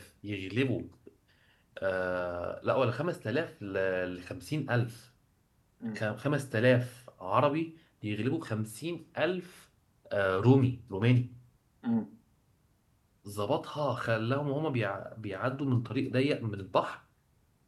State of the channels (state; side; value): identical; both; correlation 1.00